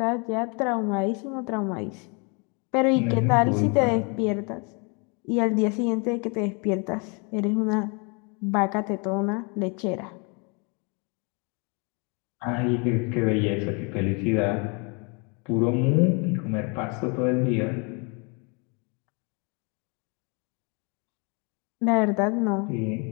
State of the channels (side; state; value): right; quieter; 33.4 dB